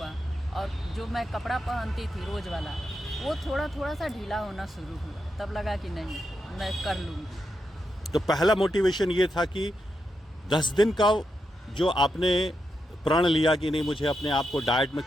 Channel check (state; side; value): normal; both; correlation 0.85